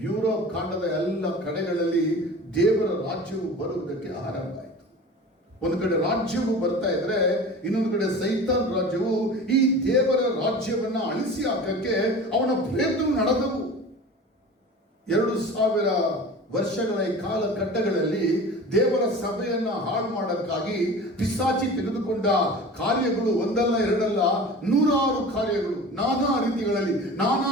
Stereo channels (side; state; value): both; normal; correlation 0.37